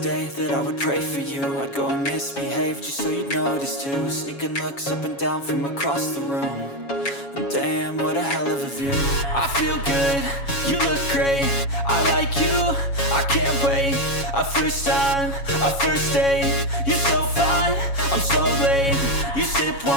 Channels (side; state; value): right; late; 7.2 ms